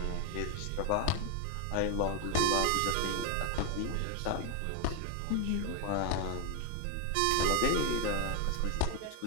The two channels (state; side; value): different; both; correlation 0.01